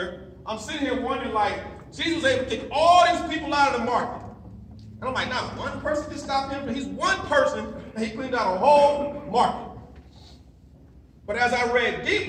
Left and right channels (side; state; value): both; identical; correlation 1.00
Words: I'm sitting here wondering, Jesus was able to take all these people out of the market. And I'm like, not one person can stop him. He's one person, and he cleaned out a whole market. But as I read